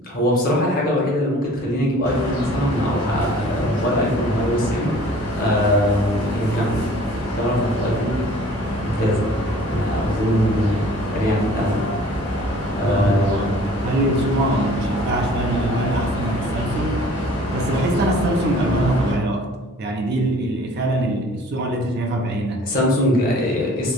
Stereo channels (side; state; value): both; normal; correlation 0.50